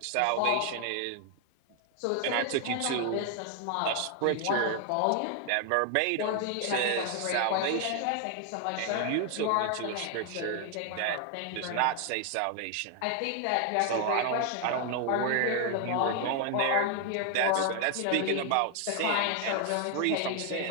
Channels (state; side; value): different; both; correlation 0.00